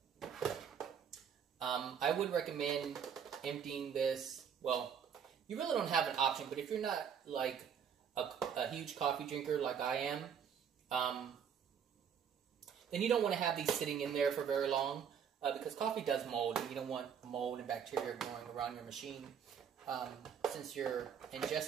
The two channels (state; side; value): quieter; left; 7.8 dB